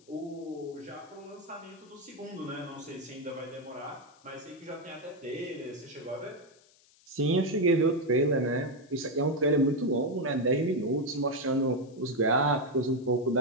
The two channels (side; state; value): left; noise; hiss, 29 dB below the sound